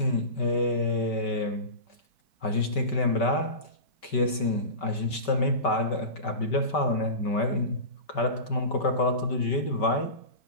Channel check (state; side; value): late; right; 5.2 ms